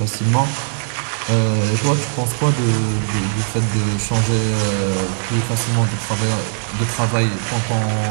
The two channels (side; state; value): left; silent; digital silence